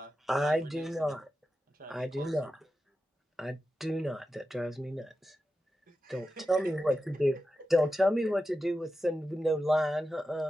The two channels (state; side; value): normal; both; correlation 0.91